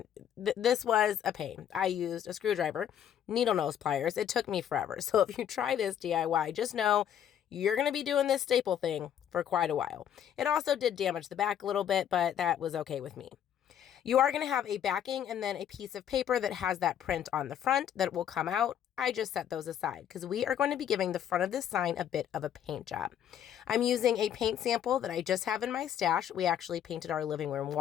this was a pain. I used a screwdriver, needle nose pliers. It took me forever, so if you try this DIY, just know you're going to be doing this staple thing for quite a while. It also did damage the back a little bit, but that was okay with me. You are going to have a backing and then a piece of paper that has that print on the front that will come out. I just set those aside because we are going to be giving the front of this sign a bit of a paint job. I'm using a paint sample that I just have in my stash. We actually painted our living room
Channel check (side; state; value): right; quieter; 9.8 dB